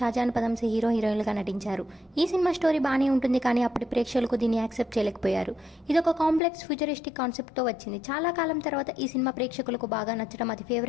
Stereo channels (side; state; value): right; drops out; at 6.4 s